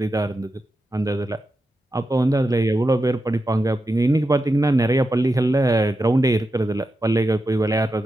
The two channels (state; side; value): normal; both; correlation 0.88